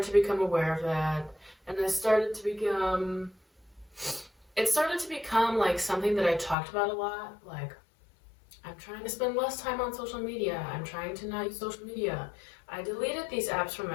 to become aware of that, and it started to become like something that I talked about a lot. Like, I'm trying to spend less time on social media. I'm trying to not use social media. I deleted these apps from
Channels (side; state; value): right; drops out; at 6.6 s